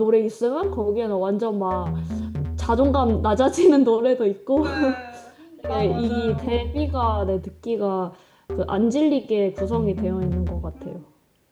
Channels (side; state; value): both; identical; correlation 1.00